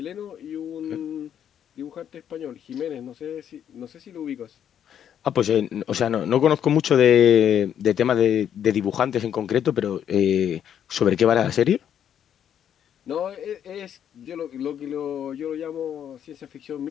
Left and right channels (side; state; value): right; quieter; 9.3 dB